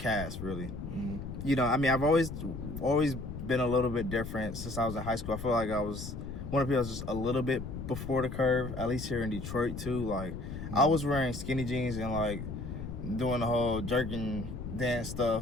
really. I mean, I've always been a little bit different since I was in high school. I feel like I was one of the people that was just a little bit before the curve, at least here in Detroit too. Like I was wearing skinny jeans and like doing the whole jerking dance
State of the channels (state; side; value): noise; left; rumble, 7 dB below the sound